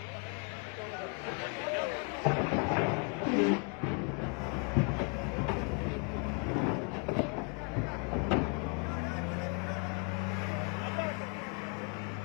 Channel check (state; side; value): quieter; right; 36.1 dB